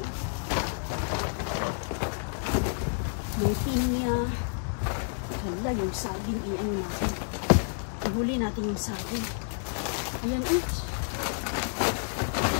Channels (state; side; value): silent; right; 58 dB below the other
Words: May pinya. Hala, yung saging, i-ano natin. Ihuli natin yung saging. Ayan, oops.